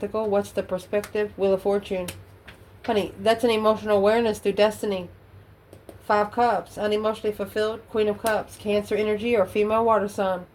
What's the perspective? Wheel of Fortune. Honey, that's an emotional awareness through destiny. 5 Cups. Unemotionally fulfilled. Queen of Cups. Cancer energy or female water sign.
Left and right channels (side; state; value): both; identical; correlation 1.00